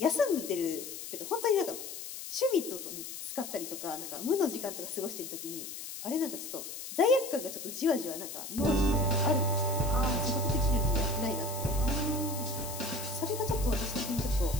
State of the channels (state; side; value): noise; left; hiss, 9 dB below the sound